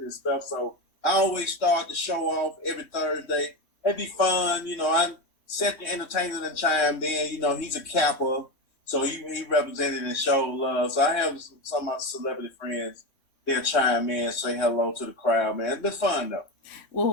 stuff. So I always start the show off every Thursday. It'd be fun, I set the entertainment and chimed in. He's a Kappa, so he represented and showed love. So I have some of my celebrity friends. They'll chime in, say hello to the crowd, man. It's been fun though.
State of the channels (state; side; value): late; right; 3.2 ms